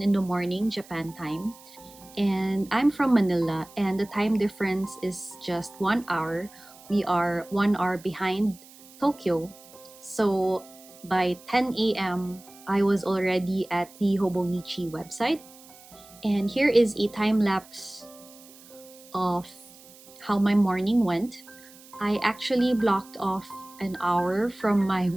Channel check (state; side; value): noise; right; hiss, 22 dB below the sound